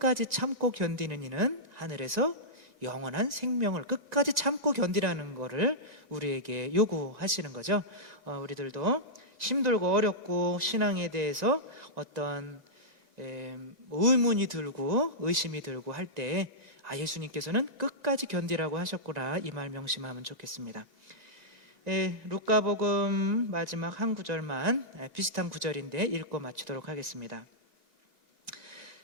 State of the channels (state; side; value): late; left; 2.0 ms